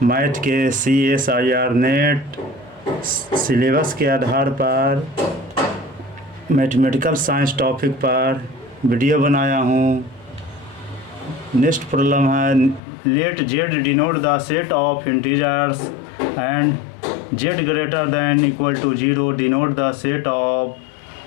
मैथ के CSIR नेट सिलेबस के आधार पर मैथमेटिकल साइंस टॉपिक पर वीडियो बनाया हूँ। नेक्स्ट प्रॉब्लम है, let Z denote the set of integers and Z greater than equal to 0 denote the set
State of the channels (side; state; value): right; drops out; at 12.8 s